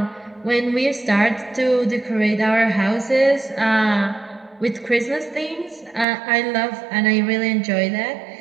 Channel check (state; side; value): drops out; left; at 6.1 s